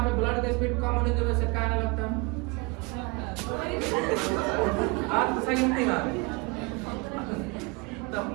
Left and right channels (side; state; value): left; quieter; 28.3 dB